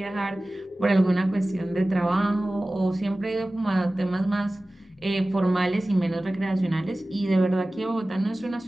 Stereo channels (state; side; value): normal; both; correlation 0.97